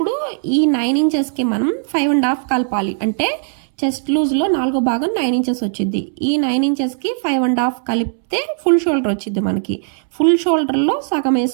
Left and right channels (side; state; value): left; silent; 67 dB below the other